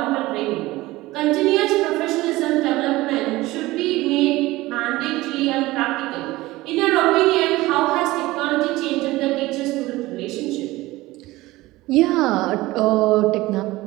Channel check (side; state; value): left; quieter; 19.0 dB